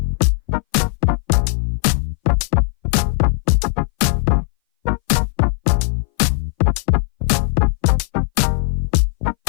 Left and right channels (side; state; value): right; silent; 61 dB below the other